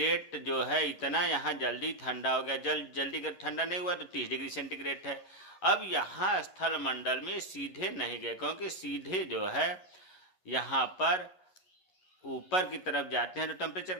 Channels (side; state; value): right; late; 11 ms